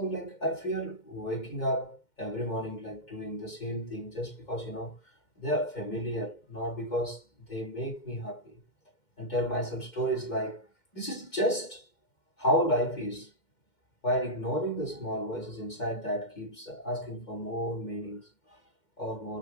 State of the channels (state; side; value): late; right; 2.1 ms